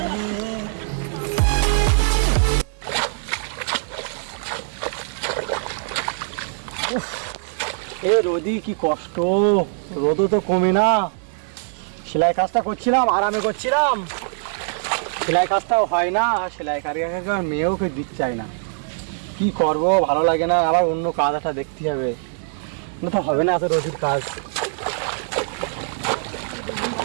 এ রোদি কি কষ্ট, রোদও তো কমে না। সেলাই কাজটা করছিলাম, আরামে করছিলাম, সেলাই কাজটাও হয় না। সেলাই কারিগরকে মেয়েও কেউ দিতে চায় না। কি করব, ভালো লাগে না। আবার অন্য কাজ একটা দেখতে হবে, না তো হবে না এত রোদির কাজ।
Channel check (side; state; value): left; silent; digital silence